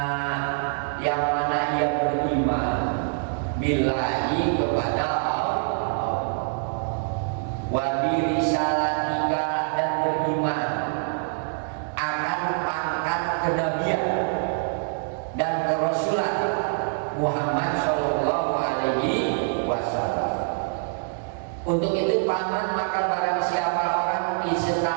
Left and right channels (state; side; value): silent; left; digital silence